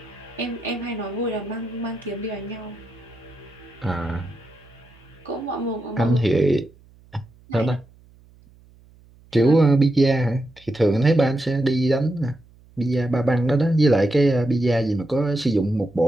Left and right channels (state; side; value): noise; right; hum, 27 dB below the sound